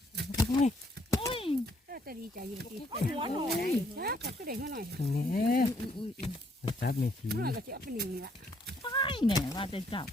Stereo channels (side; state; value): both; normal; correlation 0.68